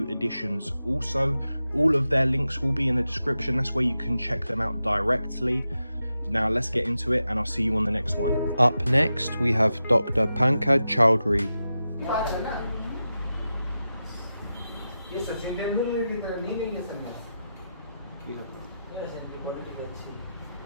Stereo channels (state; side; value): inverted; both; correlation -0.90